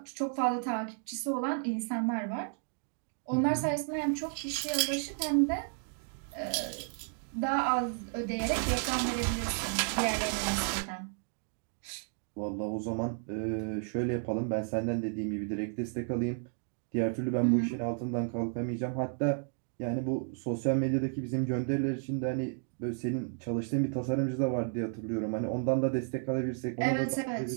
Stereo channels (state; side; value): silent; left; 56 dB below the other